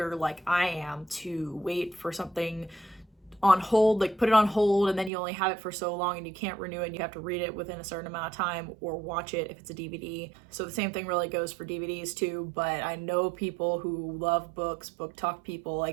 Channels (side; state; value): left; drops out; at 5.1 s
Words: like I am, to wait for something on hold, like put it on hold, and then you only have it for so long and you can't renew it and you have to read it within a certain amount of time or watch it if it's a DVD. So the same thing really goes for DVDs too, but I know people who love books, book talk people,